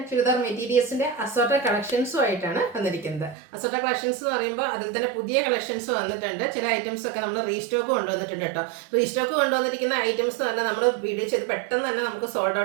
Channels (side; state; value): left; drops out; at 3.4 s